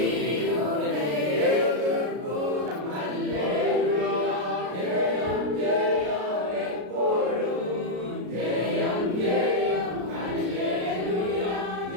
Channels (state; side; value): late; left; 33 ms